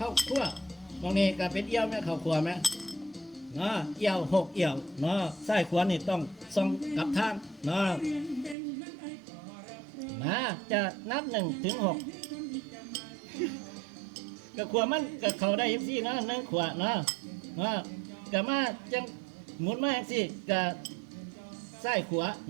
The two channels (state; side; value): drops out; left; at 8.6 s